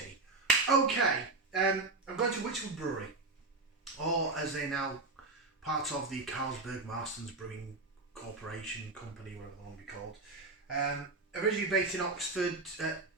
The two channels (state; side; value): quieter; left; 3.5 dB